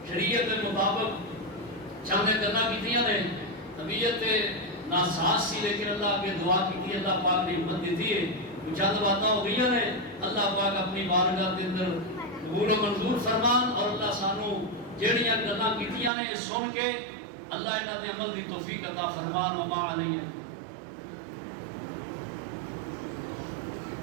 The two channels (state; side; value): drops out; left; at 16.1 s